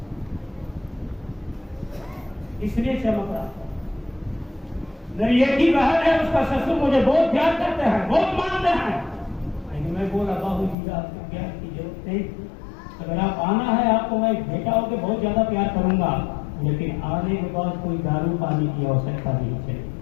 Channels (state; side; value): drops out; right; at 10.8 s